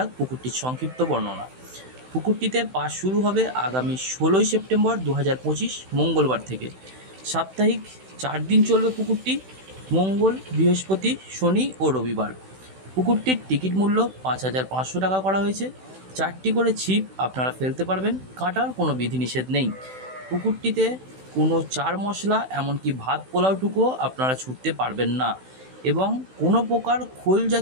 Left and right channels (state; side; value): late; left; 16 ms